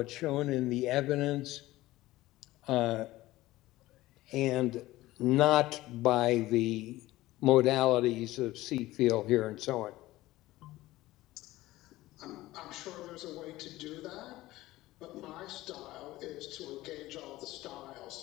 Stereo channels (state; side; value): quieter; right; 17.3 dB